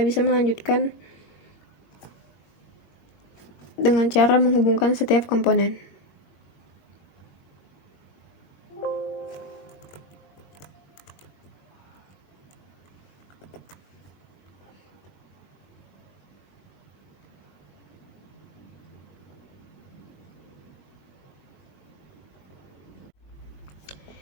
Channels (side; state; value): right; late; 21 ms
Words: melanjutkan dengan cara menghubungkan setiap komponen.